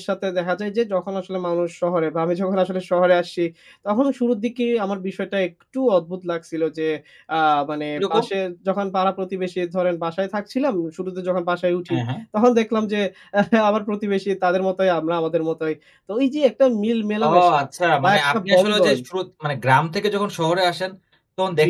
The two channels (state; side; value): identical; both; correlation 1.00